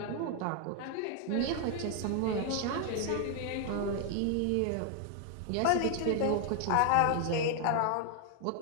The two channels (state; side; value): different; both; correlation 0.00